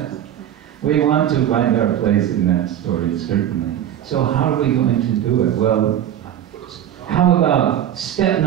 We want to find our place in that story, certainly. So how are we going to do it? Well, how about step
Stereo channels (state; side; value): quieter; left; 10.8 dB